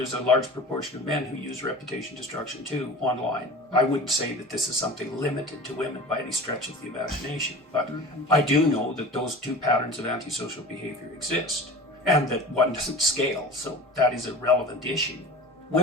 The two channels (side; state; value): both; normal; correlation 0.36